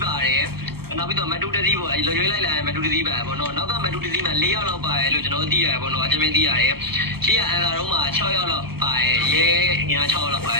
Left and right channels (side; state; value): left; late; 0.95 ms